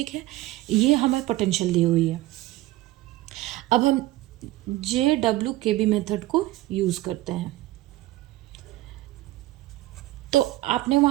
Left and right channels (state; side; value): quieter; left; 17.0 dB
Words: है। ये हमें पोटेंशियल दी हुई है। अब हम JWKB मेथड को यूज़ करते हैं। तो आपने